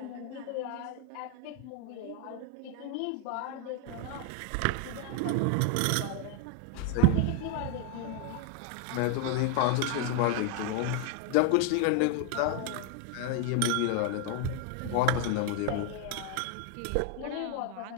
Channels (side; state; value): both; different; correlation 0.00